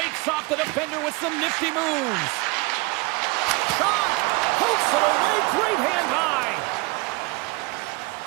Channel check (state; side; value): quieter; left; 25.1 dB